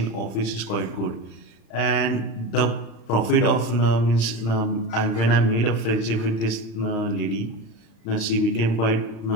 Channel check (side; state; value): right; late; 35 ms